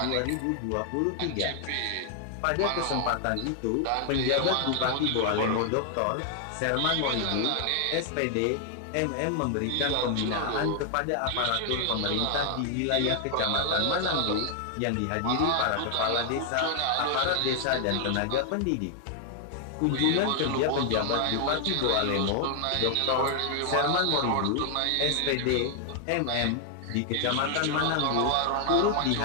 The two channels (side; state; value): both; different; correlation 0.00